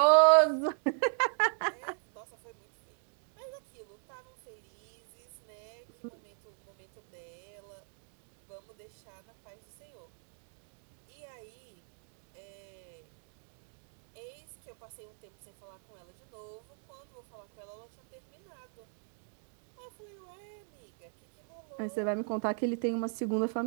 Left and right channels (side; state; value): left; silent; 53 dB below the other